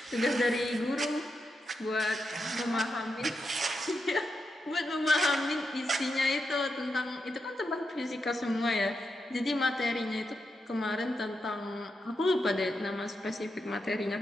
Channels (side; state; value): both; normal; correlation 0.86